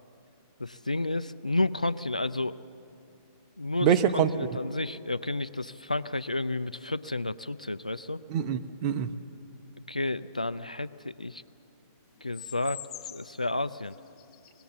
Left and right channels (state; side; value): inverted; both; correlation -0.61